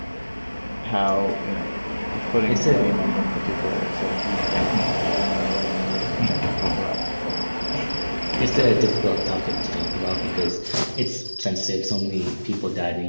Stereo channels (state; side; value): inverted; both; correlation -1.00